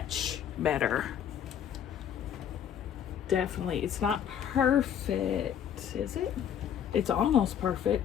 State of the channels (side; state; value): right; quieter; 9.1 dB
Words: better. Definitely. It's not perfect, is it? It's almost